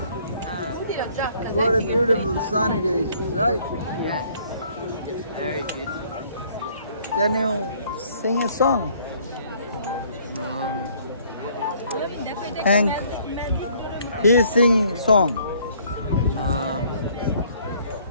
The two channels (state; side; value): inverted; both; correlation -0.60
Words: What a beautiful sunny day, right? Yes. Very beautiful. Can you sing a song? Hank, he's singing song.